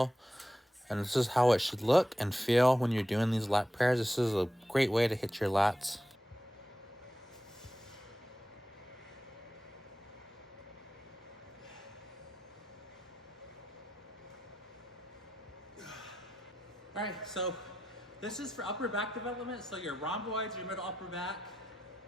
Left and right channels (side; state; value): both; normal; correlation 0.89